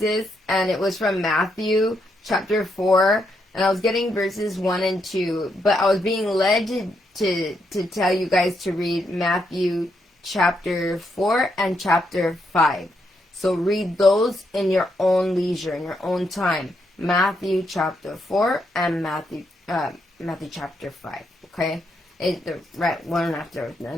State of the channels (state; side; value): normal; both; correlation 0.79